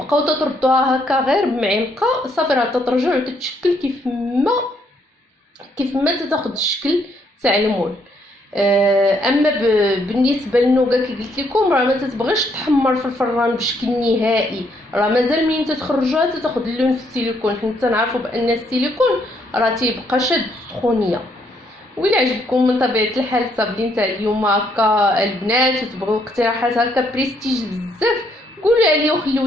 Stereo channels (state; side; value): normal; both; correlation 0.71